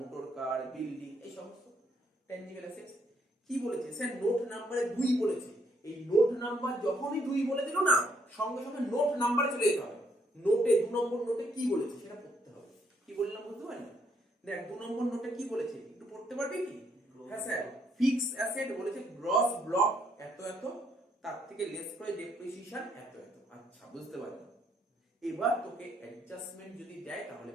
car, building, এই সমস্ত ট্যানজিবল অ্যাসেট। কি বলেছে স্যার? নোট নাম্বারে 2 বলেছে। এই নোট নাম্বার যখনই 2 বলে দিল না, সঙ্গে সঙ্গে নোট নাম্বারে চলে যেতে হবে। নোটে 2 নম্বর নোটে কি বলেছে সেটা পড়তে হবে। কি বললাম বুঝতে পারলি? দেখ 2 নম্বর নোটে কি বলেছে একটু পড়তে পারবি কি? হ্যাঁ স্যার, ফিক্স অ্যাসেট বলেছে গ্রস ব্লক এত এত, তার থেকে লেস করে ডেপ্রিসিয়েশন এত এত। আচ্ছা বুঝতে পারলাম। এবার তোকে অ্যাডজাস্টমেন্ট যদি দেয় তাহলে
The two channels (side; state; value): both; normal; correlation 0.71